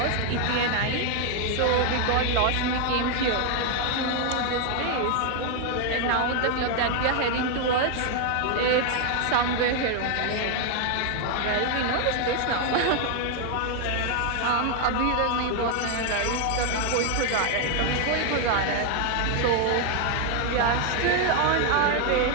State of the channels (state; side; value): different; both; correlation 0.01